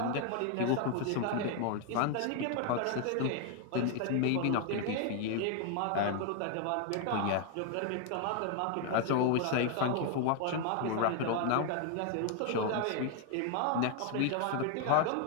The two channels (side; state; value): both; different; correlation 0.00